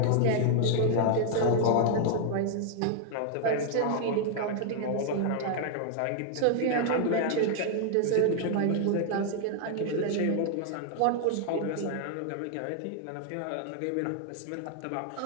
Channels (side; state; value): both; different; correlation 0.00